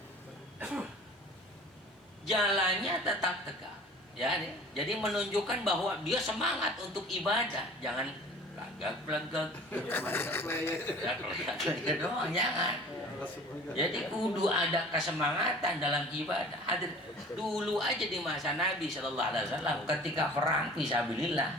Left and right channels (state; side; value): normal; both; correlation 0.45